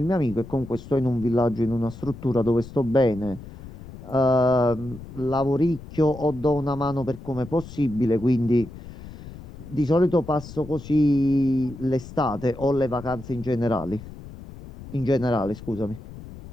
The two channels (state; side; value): noise; left; rumble, 15 dB below the sound